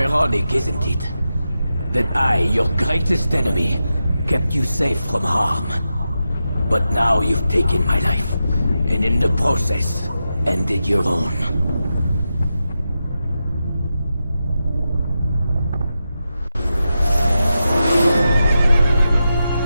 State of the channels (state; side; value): inverted; both; correlation -0.89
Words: isn't it? That I, your greatest enemy, kept you safe from harm. But now you've taken my life, and in the process, ended your own.